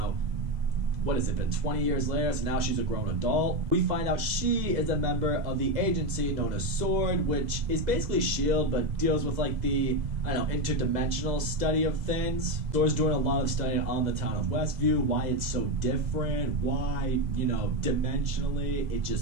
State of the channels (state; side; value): late; left; 2.0 ms